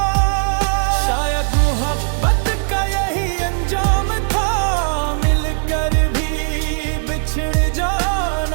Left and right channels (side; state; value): left; silent; digital silence